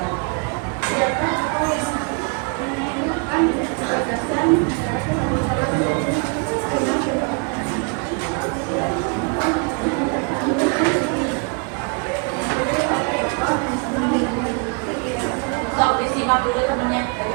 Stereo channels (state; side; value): quieter; left; 36.3 dB